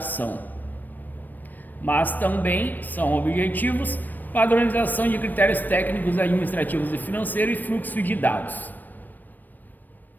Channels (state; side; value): late; right; 0.089 ms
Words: Mas também são objetivos: padronização de critérios técnicos, administrativos e financeiros e fluxo de dados.